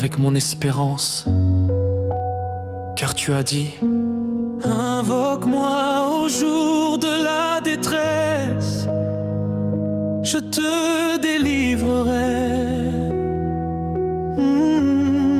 mon espérance. Car tu as dit: invoque-moi au jour de la détresse, je te délivrerai.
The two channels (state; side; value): identical; both; correlation 1.00